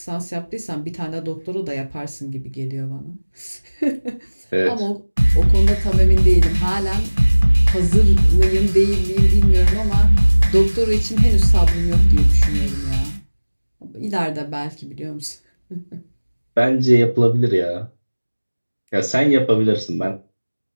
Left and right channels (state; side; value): inverted; both; correlation -1.00